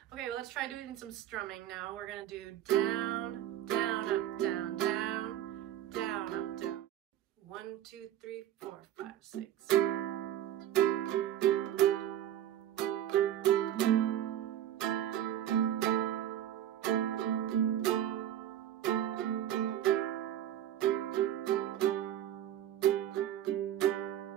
Okay, well, let's try doing some strumming now. We're gonna do down, down, up, down, down, down, up, down. 1, 2, 3, 4, 5, 6.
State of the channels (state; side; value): quieter; left; 11.5 dB